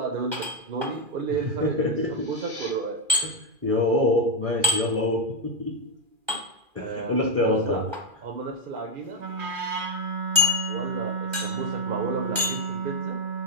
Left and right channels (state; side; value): late; left; 2.4 ms